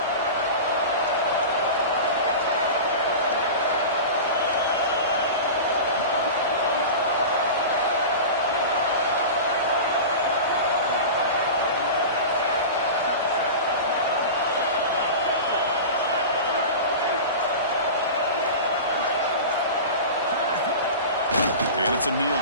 And it's a kneel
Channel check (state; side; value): inverted; both; correlation -0.30